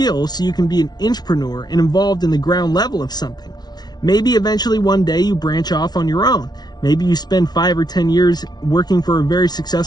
so you can be an intrapreneur and involved in the ground level of something. Maybe eventually one day you branch off on your own. Maybe you spend 5 or 10 years working for a very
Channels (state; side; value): late; right; 0.19 ms